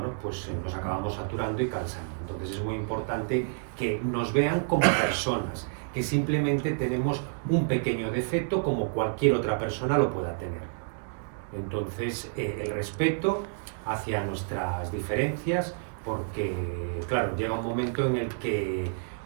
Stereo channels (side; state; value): left; silent; digital silence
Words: pues nos acabamos saturando y cansando. Entonces es muy importante que nos vean como personas, que simplemente tenemos un pequeño defecto como cualquier otra persona lo pueda tener. Entonces el respeto hacia nuestras diferencias, porque claro, llega un momento en el que